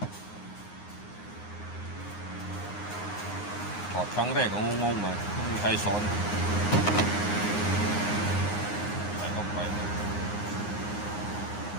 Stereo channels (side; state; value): right; late; 9.7 ms